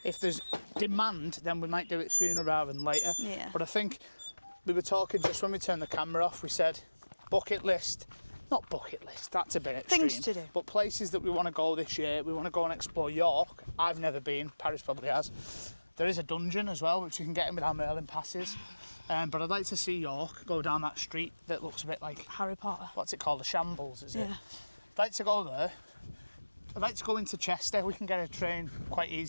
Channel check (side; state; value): both; inverted; correlation -1.00